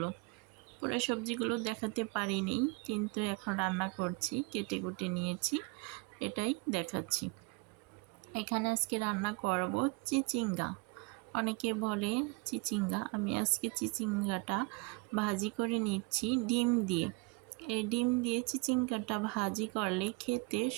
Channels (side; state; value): left; quieter; 27.0 dB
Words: পুরো সবজিগুলো দেখাতে পারিনি, কিন্তু এখন রান্না করছি, কেটে কুটে নিয়েছি, এটাই দেখাচ্ছি। এখানে আজকে রান্না করব চিচিঙ্গা। অনেকে বলে চিচিঙ্গা, আমি আজকে চিচিঙ্গাটা ভাজি করে নিচ্ছি ডিম দিয়ে। এই ডিম দিয়ে চিচিঙ্গাটা ভাজি করলে খেতে